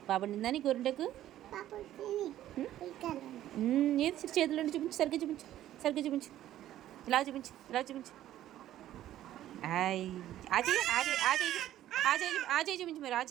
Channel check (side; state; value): left; quieter; 12.9 dB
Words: బాగా పండిందా నీ గోరింటాకు? ఏది చేతులు చూపించు. సరిగ్గా చూపించు. సరిగ్గా చూపించు. ఇలా చూపించు. ఇలా చూపించు. ఆ చేయి చూపించు. మీరు ఆ